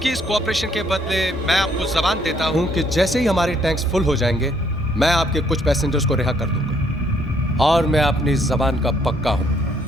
इस कोऑपरेशन के बदले मैं आपको जबान देता हूं कि जैसे ही हमारे टैंक्स फुल हो जाएंगे मैं आपके कुछ पैसेंजर्स को रिहा कर दूंगा, और मैं अपनी जबान का पक्का हूं।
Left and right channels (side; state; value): both; normal; correlation 0.67